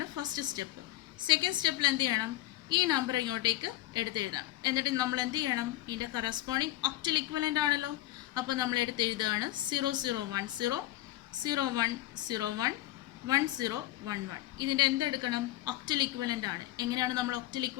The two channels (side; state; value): right; quieter; 15.7 dB